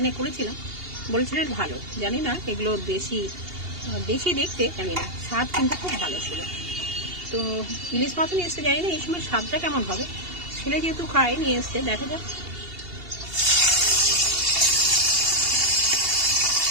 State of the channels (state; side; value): late; left; 2.8 ms